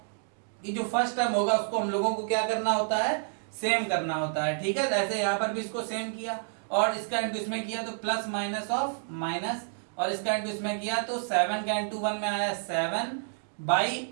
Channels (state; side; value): silent; left; digital silence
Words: कि जो फर्स्ट टर्म होगा उसको हम लोगों को क्या करना होता है, सेम करना होता है, ठीक है। तो ऐसे यहाँ पर भी इसको सेम किया और इसका इंटू इसमें किया तो प्लस माइनस ऑफ माइनस, और इसका इंटू इसमें किया तो 7 का इंटू 1 में आया